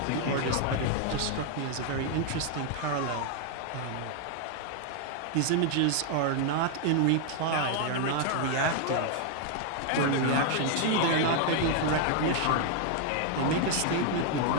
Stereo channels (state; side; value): different; both; correlation 0.00